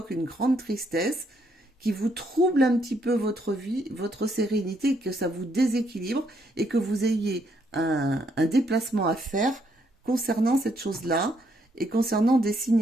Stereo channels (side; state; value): both; normal; correlation 0.72